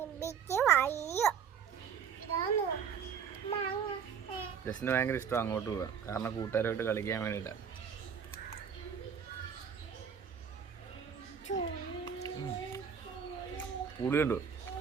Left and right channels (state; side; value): quieter; left; 7.2 dB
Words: ജസ്റ്റിന് ഭയങ്കര ഇഷ്ടം അങ്ങോട്ട് പോകാൻ, കാരണം കൂട്ടുകാരുമായിട്ട് കളിക്കാൻ വേണ്ടിയിട്ടാണ്. പുളിയുണ്ടോ?